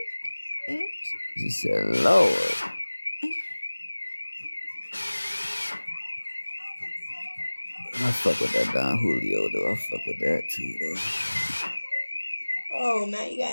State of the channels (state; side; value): inverted; both; correlation -1.00